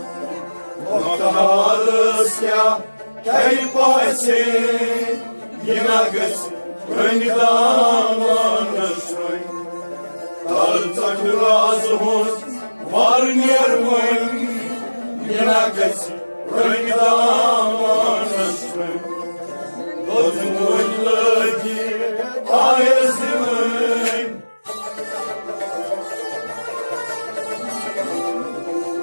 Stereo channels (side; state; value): both; inverted; correlation -1.00